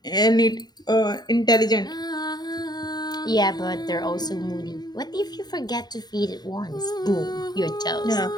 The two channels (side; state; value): right; late; 0.20 ms